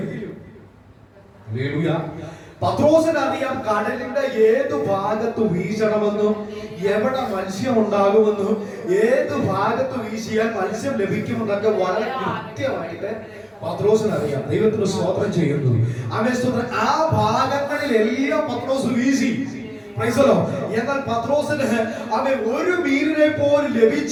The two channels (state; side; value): identical; both; correlation 1.00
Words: ഹല്ലേലൂയ, പത്രോസിന് അറിയാം കടലിന്റെ ഏത് ഭാഗത്ത് വീശണമെന്നും എവിടെ മത്സ്യം ഉണ്ടാകുമെന്നും ഏത് ഭാഗത്ത് വീശിയാൽ മത്സ്യം ലഭിക്കുമെന്നൊക്കെ വളരെ കൃത്യമായിട്ട് പത്രോസിന് അറിയാം. ദൈവത്തിന് സ്തോത്രം ചെയ്യുന്നു. അവൻ സ്തോത്രം. ആ ഭാഗങ്ങളിലെല്ലാം പത്രോസ് വീശി. Price the Lord. എന്നാൽ പത്രോസിന് അവൻ ഒരു മീനിനെ പോലും